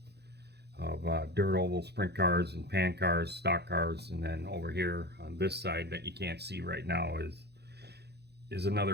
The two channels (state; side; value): late; left; 0.48 ms